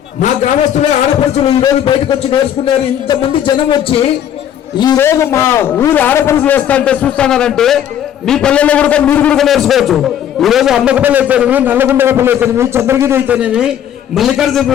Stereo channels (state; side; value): quieter; right; 10.0 dB